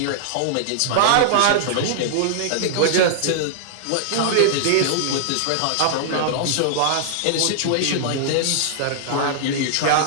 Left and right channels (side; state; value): both; different; correlation -0.01